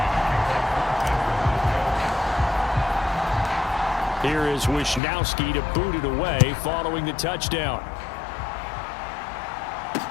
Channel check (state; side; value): drops out; right; at 5.0 s